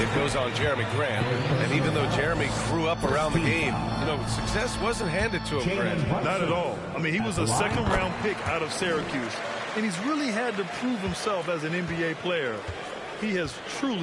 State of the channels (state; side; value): identical; both; correlation 1.00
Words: It goes on Jeremy Grant. And even though Jeremy grew up around the game, success wasn't handed to him, Grant. Not at all. I mean, he was a second-round pick out of Syracuse. And he's really had to prove himself as an NBA player. He has